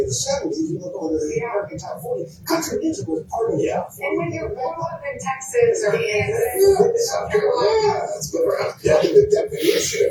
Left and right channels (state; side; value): identical; both; correlation 1.00